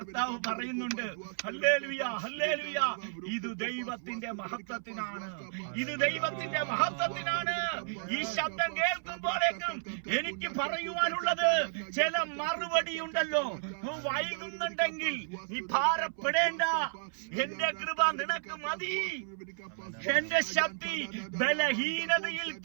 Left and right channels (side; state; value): left; silent; 56 dB below the other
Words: പറയുന്നുണ്ട്, ഹല്ലേലൂയ, ഹല്ലേലൂയ, ഇത് ദൈവത്തിന്റെ മഹത്വത്തിനാണ്, ഇത് ദൈവത്തിന്റെ മഹത്വത്തിനാണ്. ഈ ശബ്ദം കേൾക്കുമ്പോഴേക്കും എനിക്ക് പറയുവാനുള്ളത്, ചില മറുപടി ഉണ്ടല്ലോ. വൈകുന്നുണ്ടെങ്കിൽ നീ ഭാരപ്പെടേണ്ട, എന്റെ കൃപ നിനക്ക് മതി, എന്റെ ശക്തി ബലഹീനതയിൽ